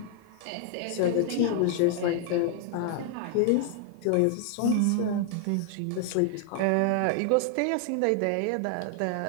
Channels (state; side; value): different; both; correlation 0.00